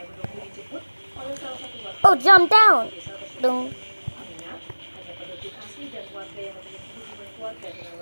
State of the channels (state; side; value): inverted; both; correlation -1.00